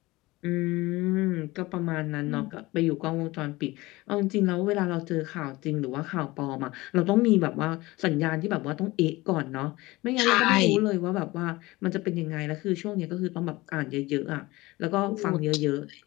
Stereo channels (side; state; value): right; quieter; 20.6 dB